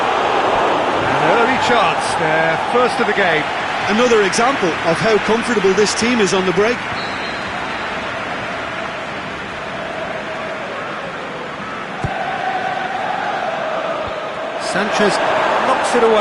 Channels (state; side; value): identical; both; correlation 1.00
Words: An early chance, their first of the game. Another example of how comfortable this team is on the break. Sanchez knocks it